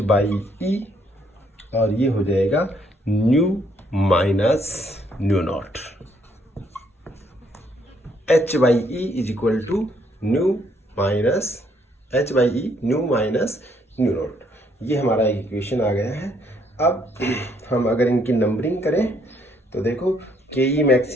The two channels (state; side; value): normal; both; correlation 0.69